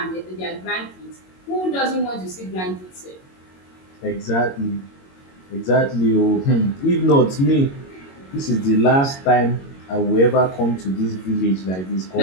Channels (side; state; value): right; late; 22 ms